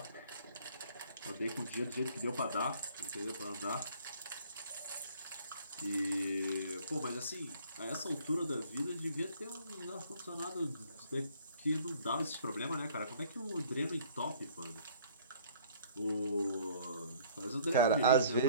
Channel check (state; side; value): inverted; both; correlation -0.56